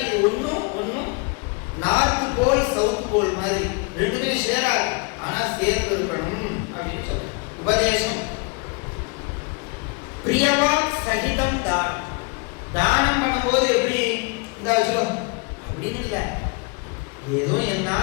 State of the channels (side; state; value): right; quieter; 29.7 dB